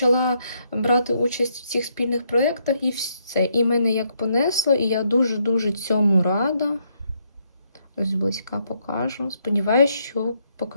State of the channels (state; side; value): inverted; both; correlation -0.75